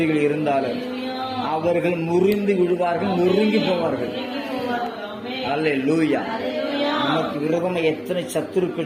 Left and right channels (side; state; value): both; identical; correlation 1.00